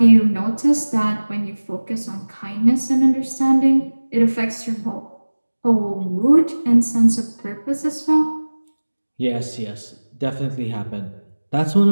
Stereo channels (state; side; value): inverted; both; correlation -1.00